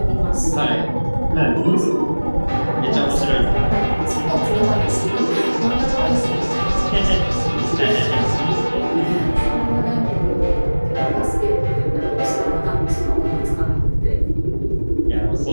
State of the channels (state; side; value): inverted; both; correlation -1.00